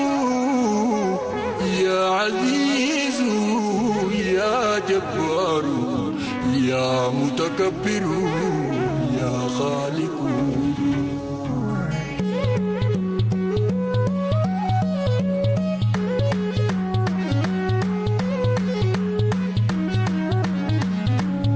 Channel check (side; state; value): both; identical; correlation 1.00